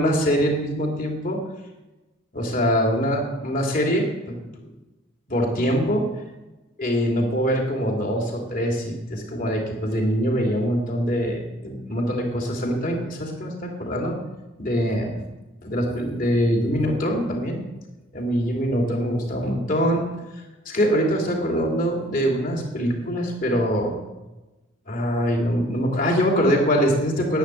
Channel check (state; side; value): normal; both; correlation 0.54